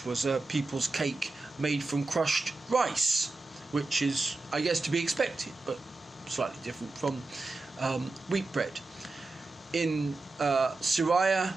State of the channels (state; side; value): quieter; left; 3.3 dB